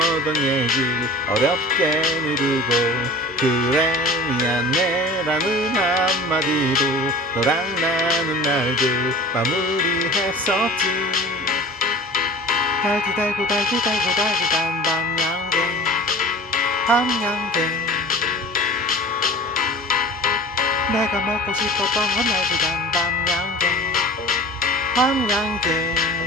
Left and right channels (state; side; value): normal; both; correlation 0.40